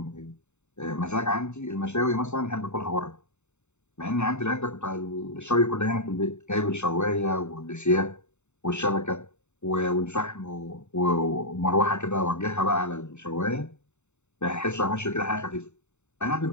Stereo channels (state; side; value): late; right; 0.83 ms